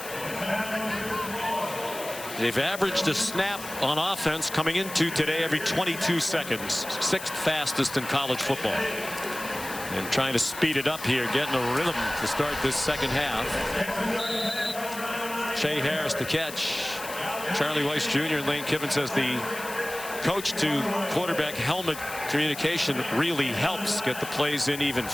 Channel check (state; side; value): noise; left; hiss, 11 dB below the sound